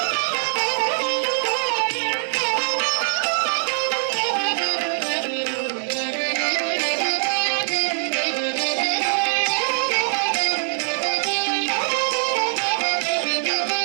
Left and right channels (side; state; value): left; silent; digital silence